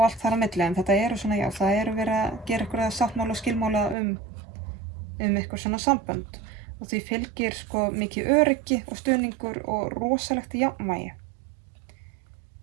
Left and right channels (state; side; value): drops out; left; at 4.0 s